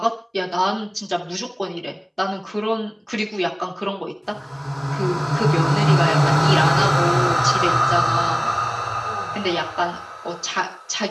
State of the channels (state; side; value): identical; both; correlation 1.00